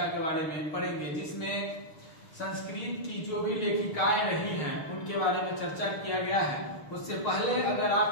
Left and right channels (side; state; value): right; late; 6.6 ms